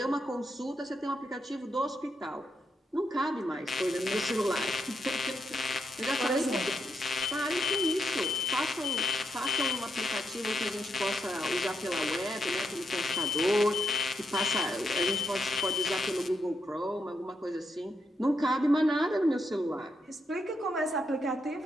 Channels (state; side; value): normal; both; correlation 0.81